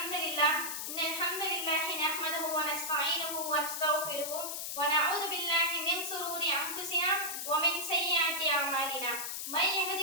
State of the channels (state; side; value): noise; left; hiss, 4 dB below the sound